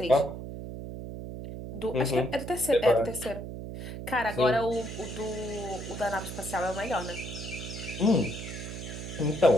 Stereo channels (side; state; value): right; noise; hum, 8 dB below the sound